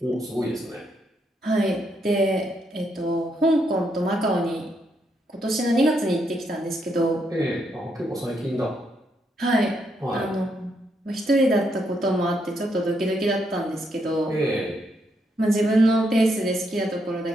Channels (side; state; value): both; normal; correlation 0.78